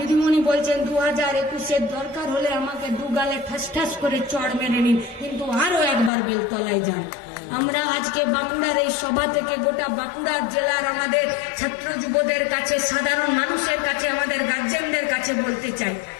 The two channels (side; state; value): right; drops out; at 6.1 s